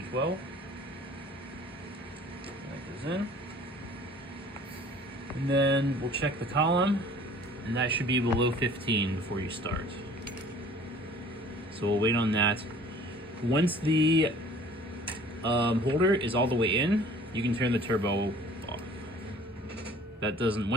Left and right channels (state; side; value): normal; both; correlation 0.50